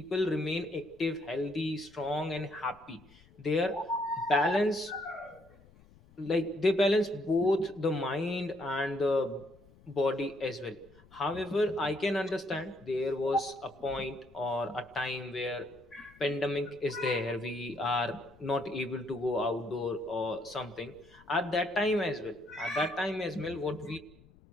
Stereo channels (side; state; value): left; noise; rumble, 26 dB below the sound